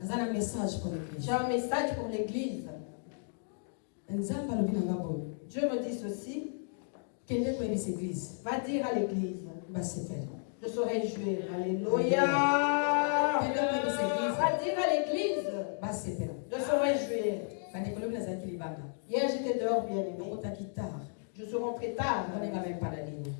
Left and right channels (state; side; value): silent; right; digital silence